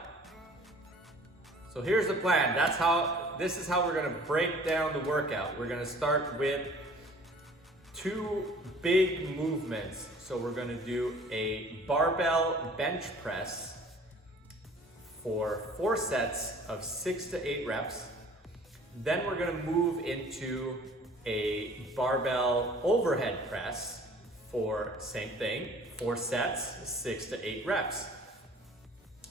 So here's the plan. This is how we're gonna break down the workout. We're gonna start with 2 big movements. So we're gonna do a barbell bench press for 4 sets of 6 to 8 reps. Then we're gonna move into a barbell overhead press for same thing, 4 sets, 6 to 8 reps.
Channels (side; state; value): both; normal; correlation 0.50